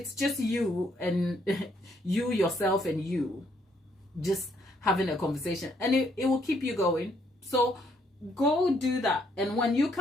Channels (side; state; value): both; normal; correlation 0.70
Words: just you and you, yourself, and you just having a conversation, and it will keep you going. So go do that, and when you